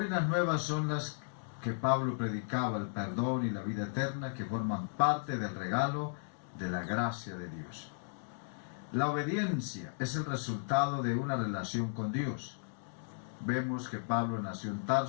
nuevas son las que Pablo predicaba: el perdón y la vida eterna, que forman parte del regalo de la gracia de Dios. La obediencia es el resultado de una relación con Dios. Vemos que Pablo nació en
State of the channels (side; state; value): right; silent; digital silence